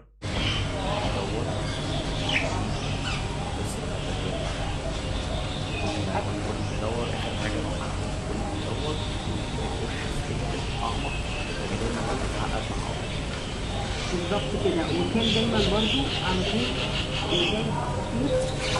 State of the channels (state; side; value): identical; both; correlation 1.00